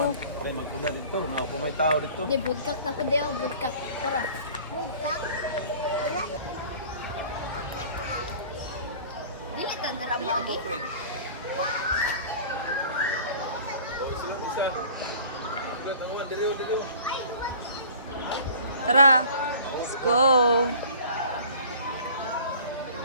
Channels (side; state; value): both; inverted; correlation -0.45